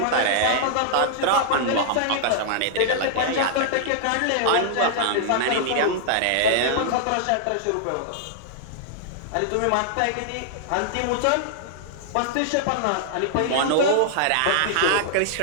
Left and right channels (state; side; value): different; both; correlation -0.01